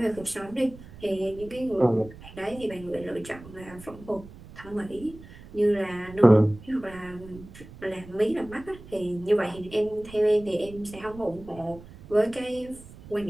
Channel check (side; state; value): right; noise; rumble, 18 dB below the sound